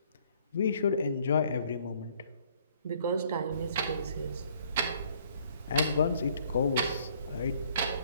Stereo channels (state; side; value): inverted; both; correlation -0.61